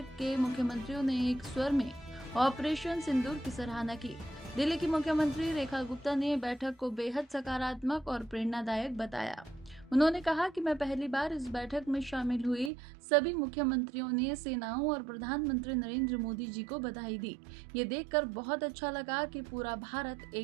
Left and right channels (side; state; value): left; drops out; at 12.7 s